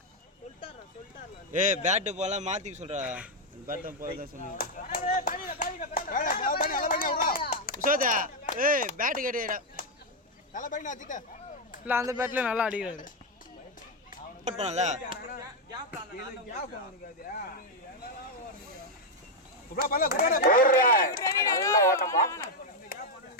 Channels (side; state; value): both; normal; correlation 0.01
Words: ஏய் பேட் போல மாத்தி சொல்றா பேட் போல தான் சொன்னேன் உசோதா ஏய் பேட் கேடிடா தல பையனா அடிட்ட இல்ல அந்த பேட்ல நல்லா அடிக்குறாரு போட் பண்ணல குப்ரா பல்ல குப்ரா நல்ல ஓட்டமா.